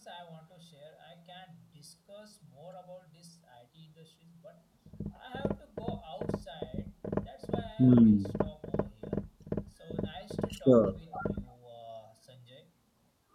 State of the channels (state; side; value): identical; both; correlation 1.00